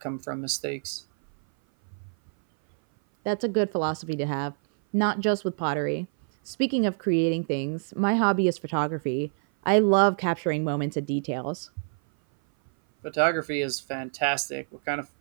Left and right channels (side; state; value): left; silent; 57 dB below the other